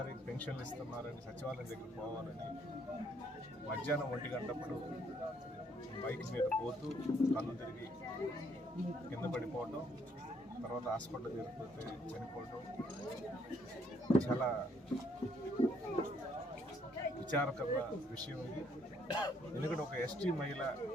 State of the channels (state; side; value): normal; both; correlation 0.68